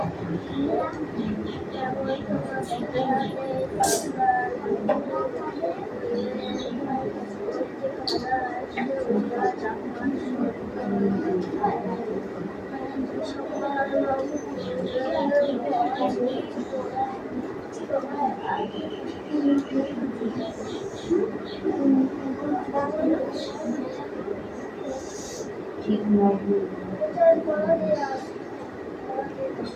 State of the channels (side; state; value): both; identical; correlation 1.00